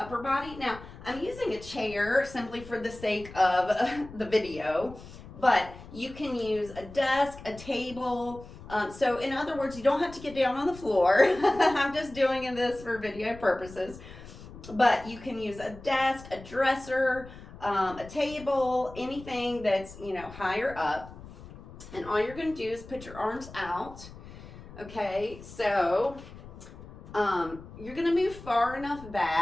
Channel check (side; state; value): left; noise; rumble, 16 dB below the sound